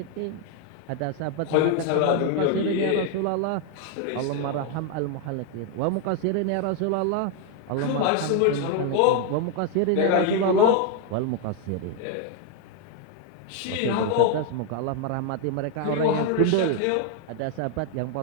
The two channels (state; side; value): different; both; correlation 0.00